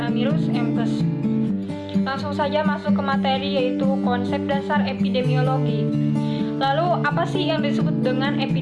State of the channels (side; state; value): both; identical; correlation 1.00